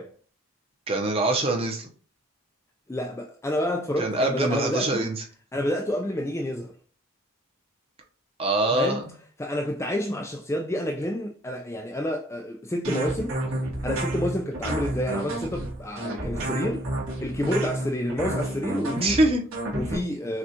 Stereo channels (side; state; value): both; normal; correlation 0.61